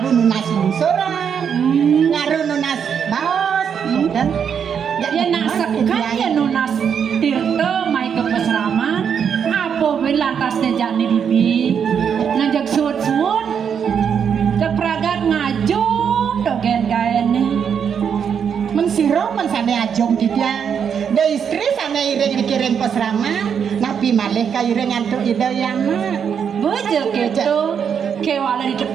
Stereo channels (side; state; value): left; quieter; 7.4 dB